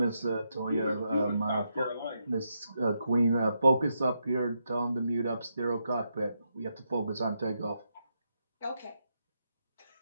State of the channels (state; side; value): inverted; both; correlation -0.82